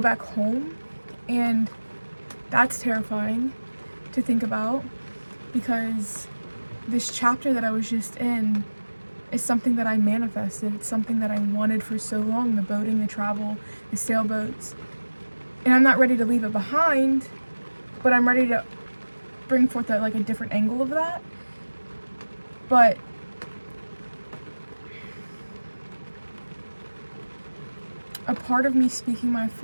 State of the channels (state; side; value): inverted; both; correlation -1.00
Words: home? And that's terrifying to think about, because this chapter that I was just in is something that I manifested. It's something that I wanted for so long, the boating, the travel, the sailboats. And I'm not ready to leave it behind, but I'm ready to bring forth a different angle of that. But a part of me speaking my